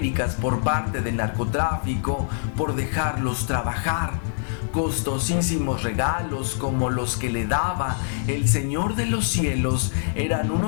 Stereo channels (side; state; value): right; silent; digital silence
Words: por parte del narcotráfico por dejarlos trabajar. Costosísimos regalos como los que le daba el Señor de los Cielos eran